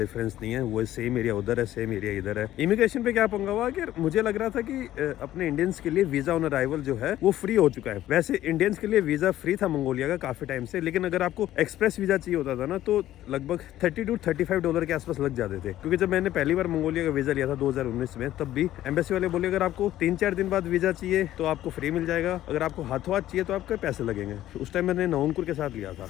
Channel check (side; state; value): right; quieter; 13.5 dB